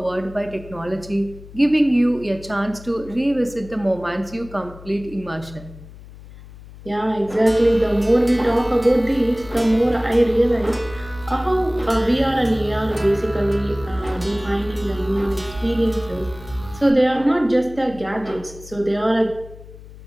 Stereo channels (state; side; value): noise; left; hum, 18 dB below the sound